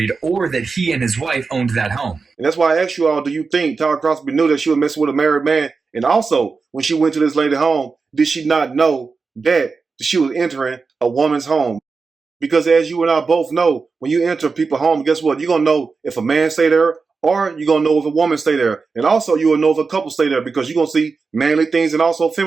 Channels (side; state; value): left; quieter; 4.6 dB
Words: or that he and his wife owned that home. And that's why I asked you all, do you think Tyra Crosby knew that she was messing with a married man? And also, when she went to this lady's home, did she not know that she was entering a woman's home? Because as you and I both know, when you enter people's home, guess what? You're going to know if a man stay there or you're going to know if a woman stay there. And also, you will know if a couple stay there because you're going to see manly things and also